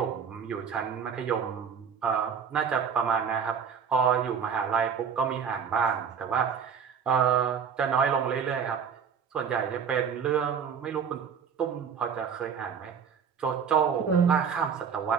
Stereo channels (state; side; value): quieter; left; 6.9 dB